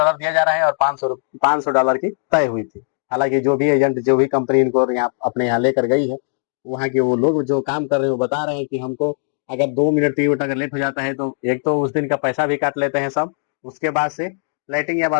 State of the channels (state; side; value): silent; right; digital silence